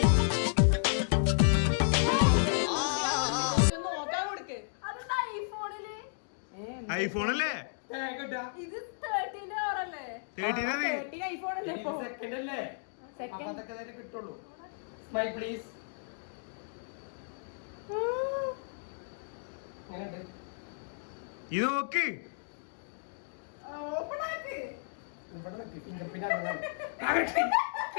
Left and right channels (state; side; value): silent; right; digital silence